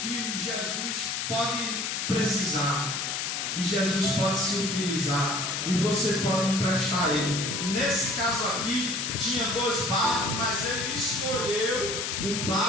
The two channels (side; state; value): left; noise; hiss, 2 dB below the sound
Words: que Jesus pode precisar, e Jesus pode se utilizar, e você pode emprestar ele. Nesse caso aqui tinha 2 barcos, mas ele escolheu o